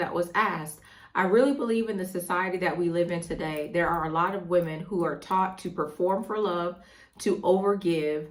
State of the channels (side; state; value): both; identical; correlation 1.00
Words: was asked. I really believe in the society that we live in today, there are a lot of women who are taught to perform for love, to overgive,